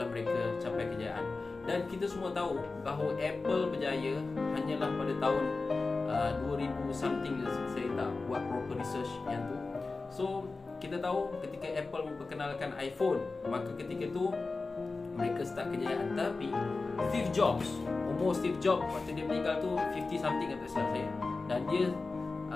mereka capai kejayaan. Dan kita semua tahu bahawa Apple berjaya hanyalah pada tahun 2000 something. Saya tak buat proper research yang tu. So kita tahu ketika Apple memperkenalkan iPhone, maka ketika tu mereka start kejayaan. Tapi Steve Jobs, umur Steve Jobs waktu dia meninggal tu 50 something kata saya. Dan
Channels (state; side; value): quieter; right; 3.8 dB